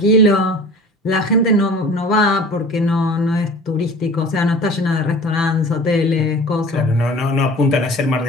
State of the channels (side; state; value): both; normal; correlation 0.43